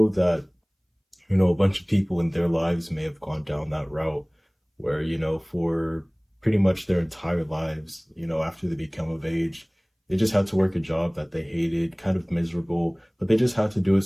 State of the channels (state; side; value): identical; both; correlation 1.00